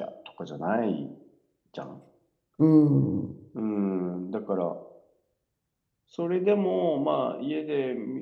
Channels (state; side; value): identical; both; correlation 1.00